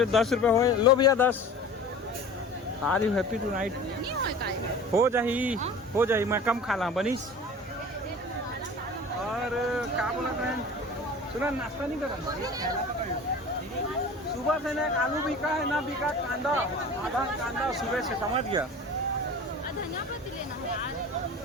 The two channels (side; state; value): both; normal; correlation 0.39